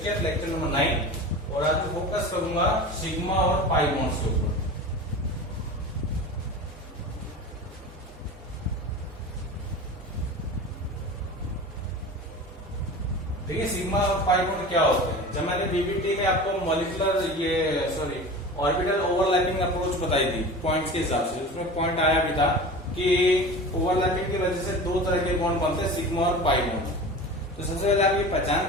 lecture number 9। और आज मैं फोकस करूंगा सिग्मा और पाई बॉन्ड्स के ऊपर। देखिए सिग्मा और पाई बॉन्ड क्या होते हैं। जब मैंने बीबीटी में आपको मॉलिक्यूलर ऑर्बिटल ओवरलैपिंग अप्रोच बताई थी पॉइंट्स के हिसाब से, उसमें पॉइंट आया भी था कि ओवरलैपिंग की वजह से दो तरह के बॉन्ड बनते हैं, सिग्मा और पाई बॉन्ड। तो सबसे पहले आप ये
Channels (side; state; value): both; normal; correlation 0.34